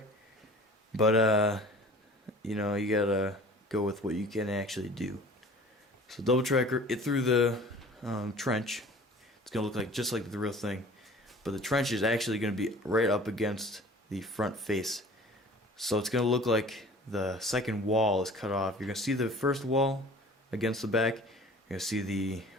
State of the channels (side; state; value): both; normal; correlation 0.46